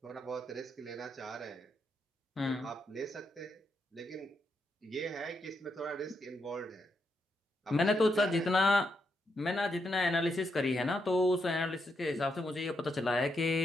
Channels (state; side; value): normal; both; correlation 0.81